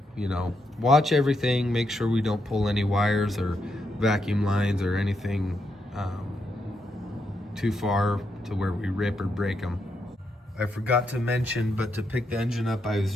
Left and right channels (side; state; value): both; normal; correlation 0.81